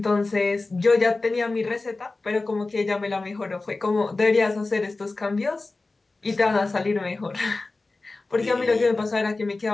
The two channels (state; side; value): quieter; right; 3.4 dB